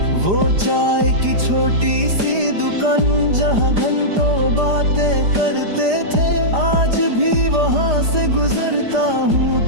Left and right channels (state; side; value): late; left; 5.0 ms